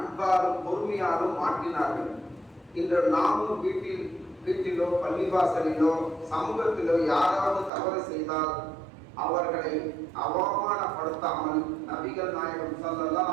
பொறுமையாலும் மாற்றினார்கள். இன்று நாமும் வீட்டிலோ பள்ளிவாசலிலோ சமூகத்திலோ யாராவது தவறு செய்தால் அவர்களை அவமானப்படுத்தாமல் நபிகள் நாயகம் ஸல்லல்லாஹு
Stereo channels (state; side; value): drops out; left; at 7.7 s